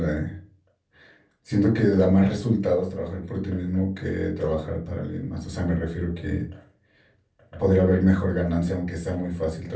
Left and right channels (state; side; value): identical; both; correlation 1.00